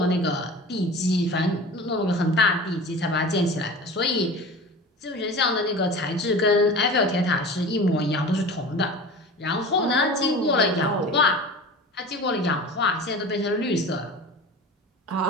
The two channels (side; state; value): both; normal; correlation 0.36